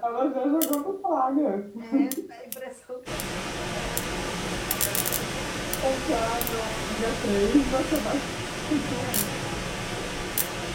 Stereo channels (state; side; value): identical; both; correlation 1.00